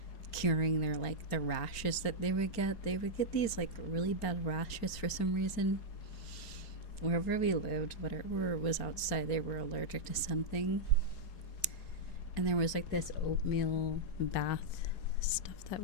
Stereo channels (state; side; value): late; right; 4.4 ms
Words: curing their like the rashes that they would get. They would get these like really bad rashes for some reason. Wherever we lived, whatever was outside, they were allergic to something. And there was like this oatmeal bath stuff that